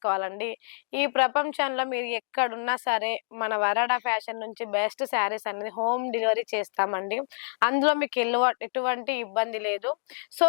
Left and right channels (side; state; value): right; silent; digital silence